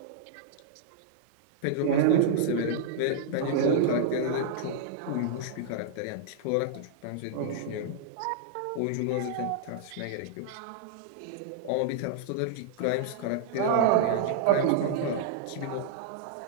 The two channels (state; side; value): different; both; correlation -0.01